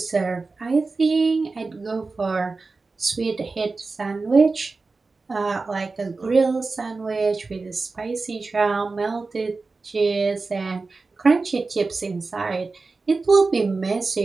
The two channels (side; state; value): left; quieter; 3.9 dB